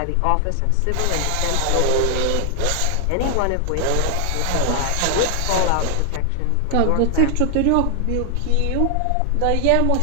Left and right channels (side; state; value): both; different; correlation 0.00